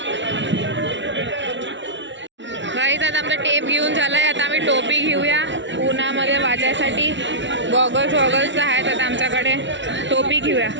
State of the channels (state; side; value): late; left; 0.54 ms